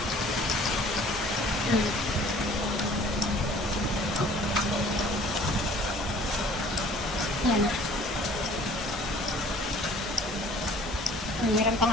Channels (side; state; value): both; normal; correlation 0.52